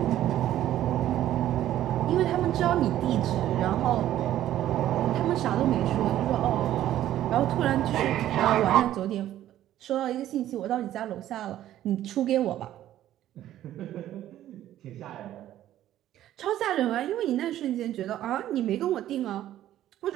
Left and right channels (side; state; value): left; quieter; 12.7 dB